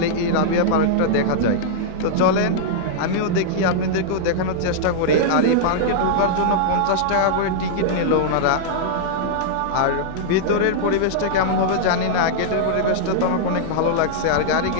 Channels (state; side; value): different; both; correlation -0.02